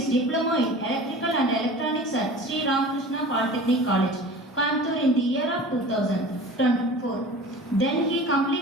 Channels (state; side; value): normal; both; correlation 0.39